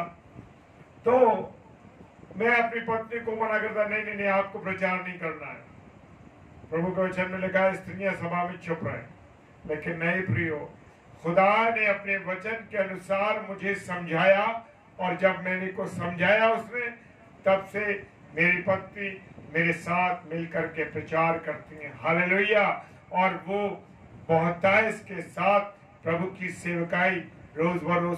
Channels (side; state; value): both; identical; correlation 1.00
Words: तो मैं अपनी पत्नी को मना करता, नहीं नहीं नहीं आपको प्रचार नहीं करना है। प्रभु के वचन में लिखा है स्त्रियां सभा में चुप रहे, लेकिन नहीं प्रियो, खुदा ने अपने वचन के अनुसार मुझे समझाया और जब मैंने को समझाया उसने, तब से मेरी पत्नी मेरे साथ मिलकर के प्रचार करती हैं। हालेलुया। और वो बहुतायत के साथ प्रभु की सेवकाई रोज